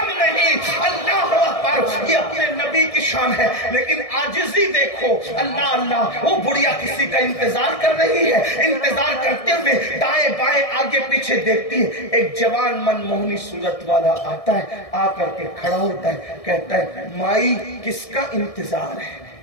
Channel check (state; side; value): late; right; 1.6 ms